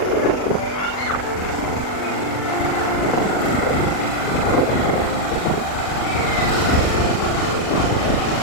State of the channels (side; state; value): right; late; 40 ms